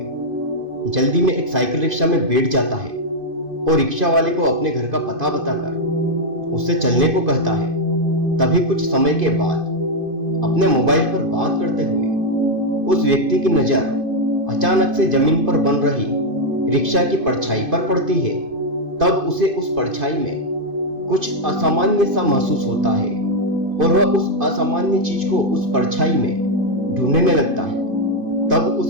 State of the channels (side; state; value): left; late; 2.5 ms